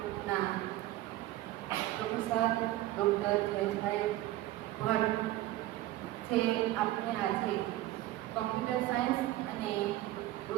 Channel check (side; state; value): left; quieter; 15.8 dB